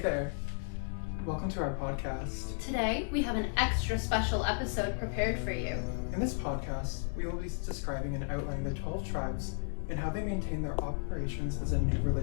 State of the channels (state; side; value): silent; right; 55 dB below the other